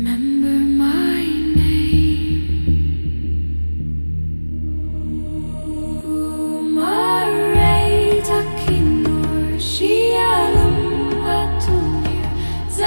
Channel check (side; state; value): both; inverted; correlation -1.00